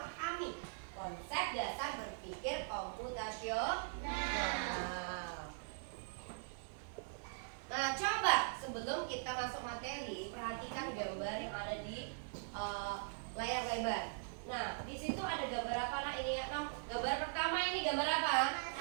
konsep dasar berpikir komputasional. Nah, coba sebelum kita masuk materi, perhatikan gambar yang ada di layar lebar. Nah, di situ ada gambar apa, Nak? Ini ya, gambar pertama ini gambar apa?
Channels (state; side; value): silent; left; digital silence